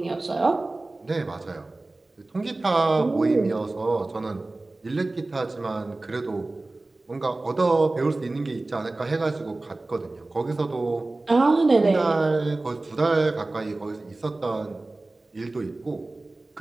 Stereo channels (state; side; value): quieter; left; 3.0 dB